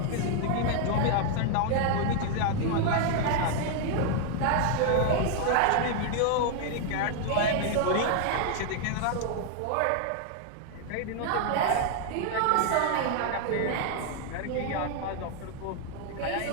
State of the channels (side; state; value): both; different; correlation 0.00